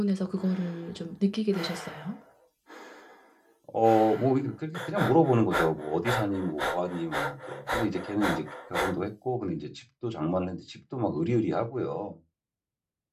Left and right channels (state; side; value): identical; both; correlation 1.00